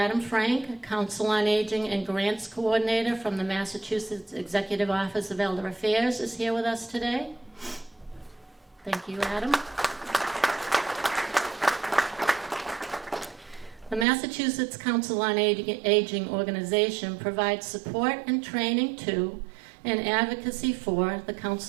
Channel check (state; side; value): drops out; left; at 14.1 s